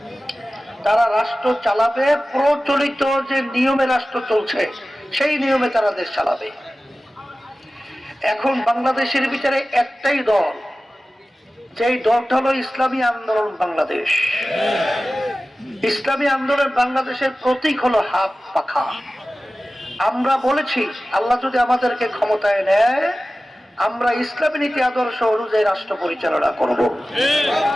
তারা রাষ্ট্র চালাবে প্রচলিত যে নিয়মে রাষ্ট্র চলছে সেই নিয়মে তারা দেশ চালাবে। এখন বাংলাদেশের ভিতরে একটাই দল, যেই দলটা হলো ইসলামী আন্দোলন বাংলাদেশ। ইসলামী আন্দোলন বাংলাদেশের প্রতীক হলো হাত পাখা। আমরা বলেছি আল্লাহ যদি আমাদেরকে ক্ষমতায় নেয়, আমরা ইসলামী নীতি আদর্শ অনুযায়ী রাষ্ট্র পরিচালনা করব।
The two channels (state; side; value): normal; both; correlation 0.96